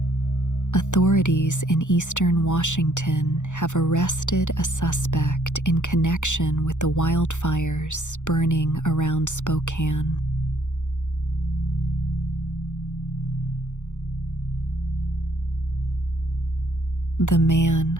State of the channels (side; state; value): right; late; 0.85 ms